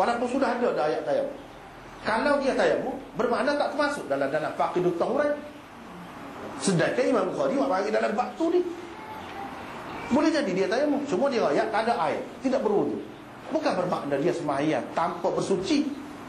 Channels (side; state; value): both; identical; correlation 1.00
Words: sudah ada dah ayat tayamum. Kalau dia tayamum bermakna tak termasuk dalam faqidut tahuran. Sedangkan Imam Bukhari buat bagi dalam bab tu ni. Boleh jadi dia tayamum, cuma dia ayat tak ada air, tidak berwudu. Bukan bermakna dia sembahyang tanpa bersuci.